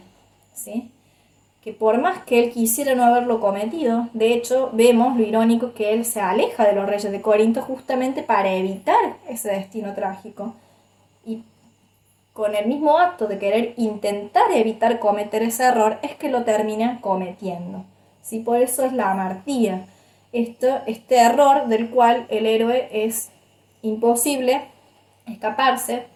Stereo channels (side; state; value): both; identical; correlation 1.00